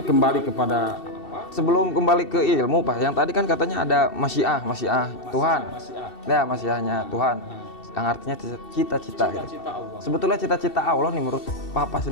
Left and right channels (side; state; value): right; late; 2.7 ms